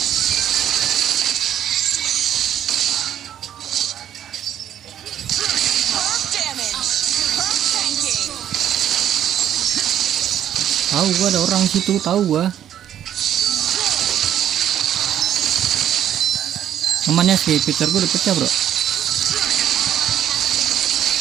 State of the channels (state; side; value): quieter; left; 10.6 dB